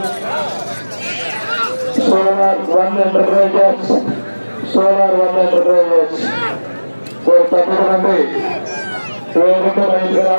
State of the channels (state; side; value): inverted; both; correlation -1.00